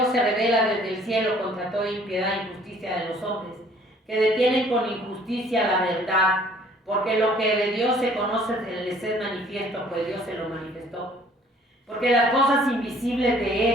se revela desde el cielo contra toda impiedad e injusticia de los hombres, que detienen con injusticia la verdad, porque lo que de Dios se conoce les es manifiesto, pues Dios se lo manifestó. Porque las cosas invisibles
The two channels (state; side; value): normal; both; correlation 0.57